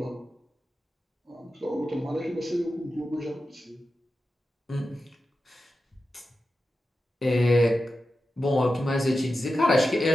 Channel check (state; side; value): normal; both; correlation 0.92